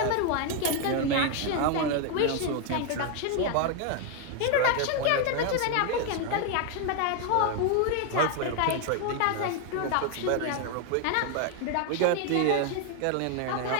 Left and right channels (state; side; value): different; both; correlation 0.00